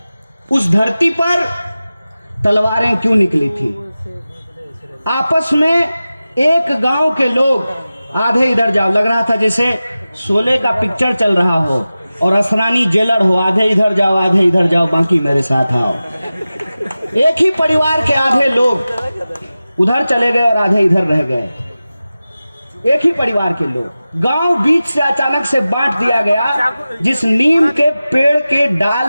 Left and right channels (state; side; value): inverted; both; correlation -0.95